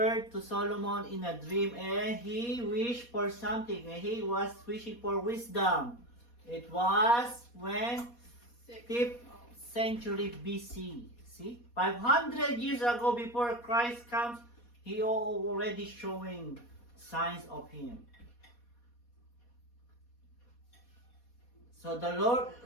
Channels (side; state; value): right; late; 4.2 ms